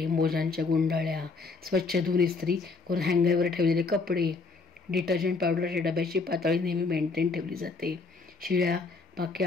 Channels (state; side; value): quieter; right; 4.2 dB